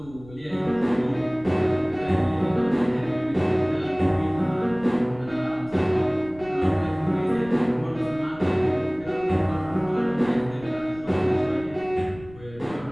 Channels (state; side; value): noise; left; rumble, 20 dB below the sound